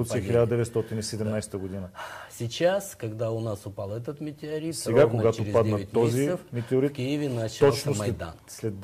1917 година. Сейчас, когда у нас упал этот метеорит, сега, когато падна този метеорит, в Киеве начался Майдан. След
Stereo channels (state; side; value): identical; both; correlation 1.00